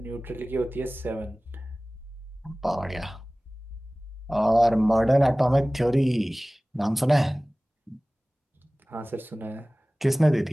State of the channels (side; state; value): both; normal; correlation 0.98